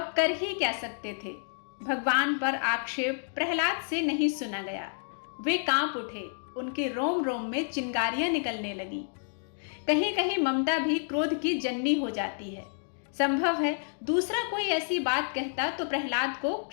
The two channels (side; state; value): right; silent; digital silence